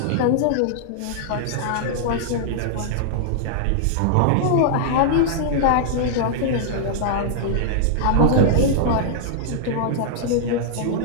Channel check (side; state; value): both; different; correlation -0.01